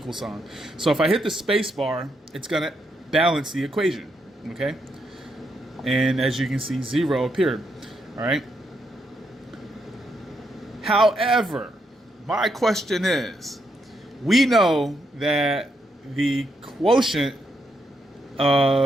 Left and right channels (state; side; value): normal; both; correlation 0.79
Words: sign. So if I hit the space bar, it's going to balance the equation. Okay. And as you can see, 0 appeared. All right. However, my question is, we know that the quotient